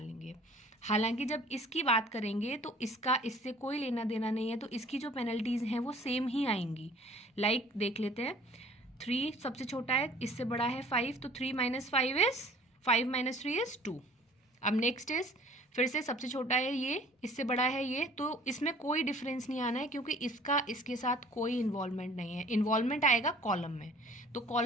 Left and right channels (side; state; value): both; normal; correlation 0.51